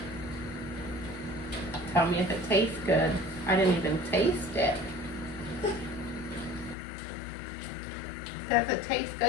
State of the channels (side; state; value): right; drops out; at 6.8 s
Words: Tell me if it tastes good. I didn't even taste it. Does it taste